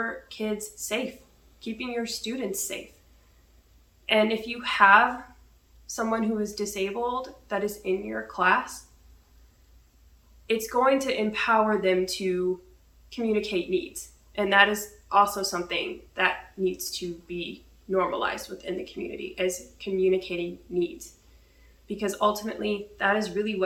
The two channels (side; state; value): both; identical; correlation 1.00